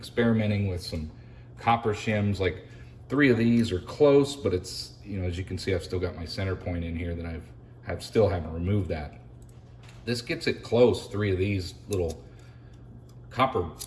with some copper shims, like 3 of these are close, but it's you know, as you can see, I've still got my center point in here that still haven't removed that. This gets it close, 3 of these little copper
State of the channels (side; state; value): both; identical; correlation 1.00